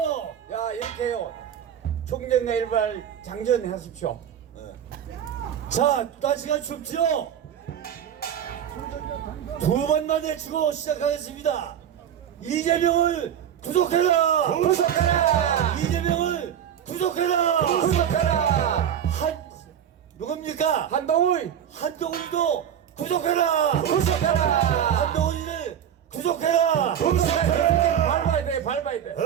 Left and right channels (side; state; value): left; quieter; 9.5 dB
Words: 야 이렇게요. 총정과 일발 장전하십시오. 자, 날씨가 춥죠? 두 번 만에 주고 시작하겠습니다. 이재명을 구속해라! 구속하라! 이재명을 구속해라! 구속하라! 누굽니까? 한동훈 한동훈도 구속해라! 구속하라! 한동훈을 구속해라! 구속하라! 밟아야 돼, 밟아야 돼.